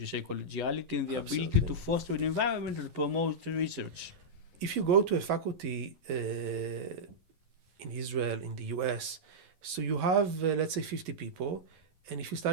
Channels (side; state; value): left; late; 11 ms